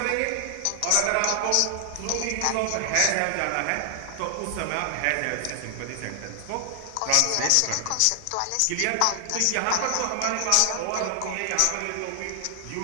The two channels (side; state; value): both; different; correlation 0.00